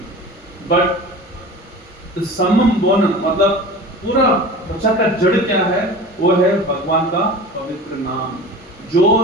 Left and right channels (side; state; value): both; normal; correlation 0.36